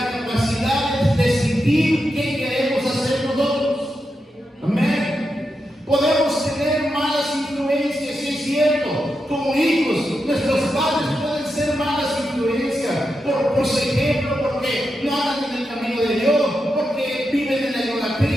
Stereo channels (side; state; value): both; normal; correlation 0.87